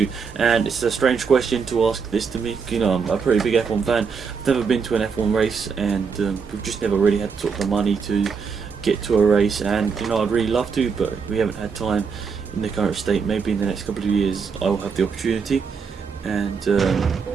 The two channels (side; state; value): left; quieter; 5.7 dB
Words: And it's a strange question to ask this to me. I'm a pretty big F1 fan. I've never been to an F1 race, and we've just never really had sort of the money to get to a race. And I'd really love to, but we haven't had time in the current state. Maybe in the next couple of years, I will have the opportunity. And